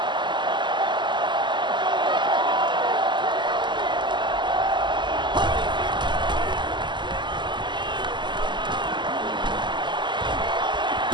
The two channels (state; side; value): late; left; 0.22 ms